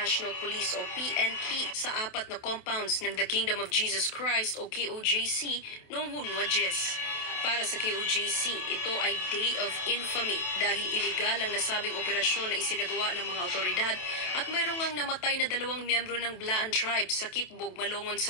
Police o PNP sa 4 na compounds ng The Kingdom of Jesus Christ o KOJC noong Hunwa-Jes. Para sa KOJC, ito ay Day of Infamy dahil iligal ang nasabing operasyon na isinagawa ng mga otoridad at mayroong ngang namatay na 2 miyembro ng Blaan Tribe sa Kitbog, Malongon,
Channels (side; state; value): right; late; 28 ms